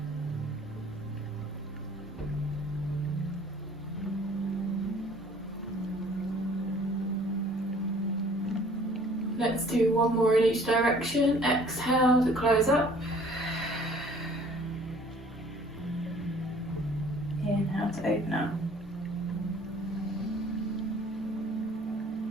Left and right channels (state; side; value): normal; both; correlation 0.54